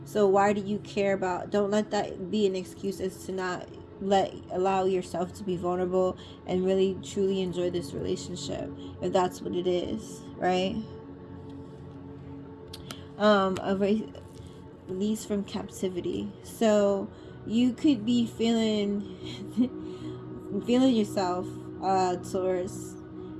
So why do you care about, don't let that be an excuse as to not allow yourself to be vulnerable and really truly enjoy this relationship, if that's what it is, right? Release from captivity. So you could be feeling yourself, Taurus.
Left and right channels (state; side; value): identical; both; correlation 1.00